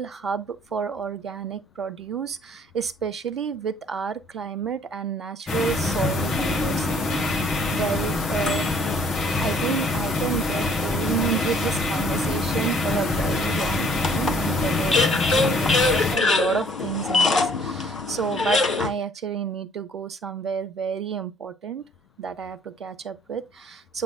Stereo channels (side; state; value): both; normal; correlation 0.59